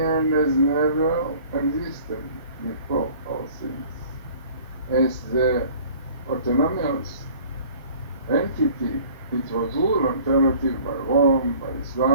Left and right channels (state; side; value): inverted; both; correlation -0.49